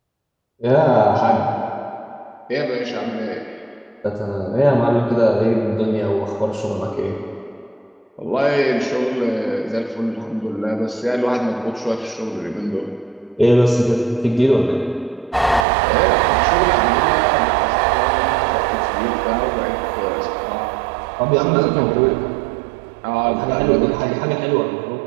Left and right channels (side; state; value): left; drops out; at 15.7 s